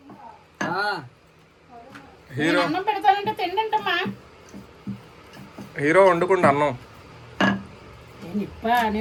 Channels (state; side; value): identical; both; correlation 1.00